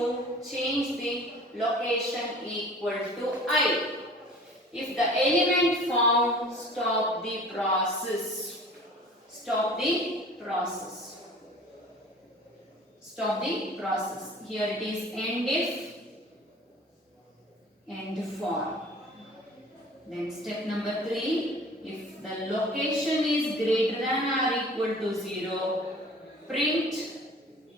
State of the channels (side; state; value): both; normal; correlation 0.45